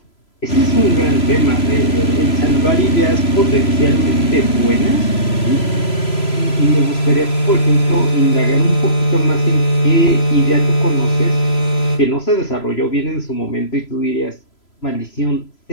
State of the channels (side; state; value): right; late; 3.0 ms